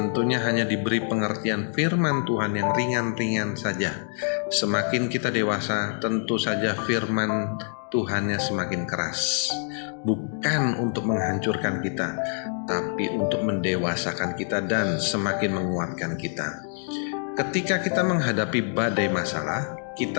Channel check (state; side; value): silent; right; 61 dB below the other